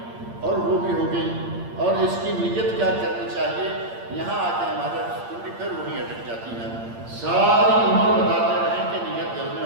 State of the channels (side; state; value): left; late; 8.7 ms